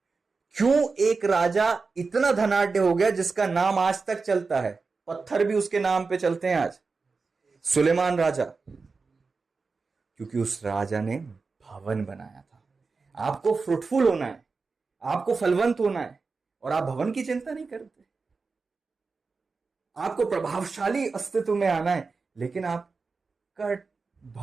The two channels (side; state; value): left; quieter; 4.4 dB